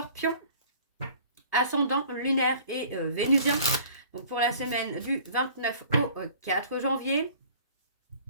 Ascendant, lunaire et vénusien. Donc, pour la semaine du 29 au 4 janvier.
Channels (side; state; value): both; inverted; correlation -0.50